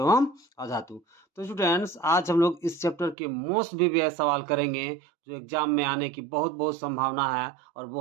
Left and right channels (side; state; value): left; drops out; at 3.2 s